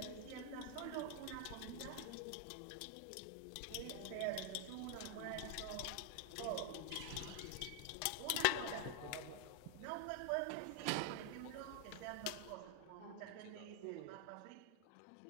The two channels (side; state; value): both; different; correlation 0.00